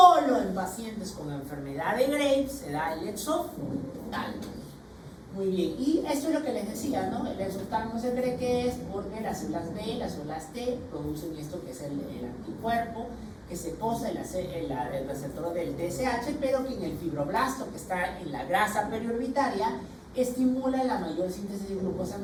en pacientes con enfermedad de Graves se da el exoftalmos. Muy bien, y esto es lo que les decía, ¿no? El exoftalmos se cree que es porque las células B, las células T producen esto que es el anticuerpo que se posa en el receptor del TSH, pero que en el fibroblasto, que está en la grasa periorbitaria, estimula la mayor síntesis de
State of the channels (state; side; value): identical; both; correlation 1.00